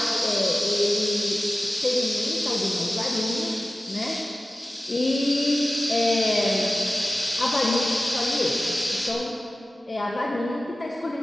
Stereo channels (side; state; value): both; normal; correlation 0.96